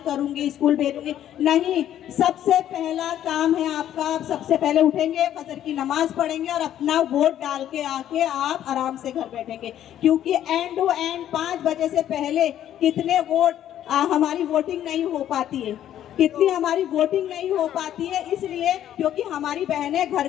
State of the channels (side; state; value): right; quieter; 11.3 dB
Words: करूंगी, स्कूल भेजूंगी। नहीं, सबसे पहला काम है आपका, आप सबसे पहले उठेंगे, फजर की नमाज पढ़ेंगे और अपना वोट डाल के आके आप आराम से घर बैठेंगे। क्योंकि एंड टू एंड 5 बजे से पहले कितने वोट हमारी वोटिंग नहीं हो पाती है, कितनी हमारी वोटिंग नहीं हो पाती है, इसलिए क्योंकि हमारी बहनें घर